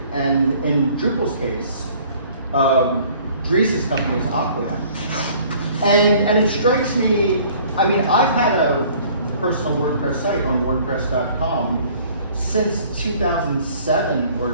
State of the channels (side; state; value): both; inverted; correlation -0.54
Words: and in Drupal's case, Dries' company is Aquia, and it strikes me. I've had a personal WordPress site on WordPress.com since 2007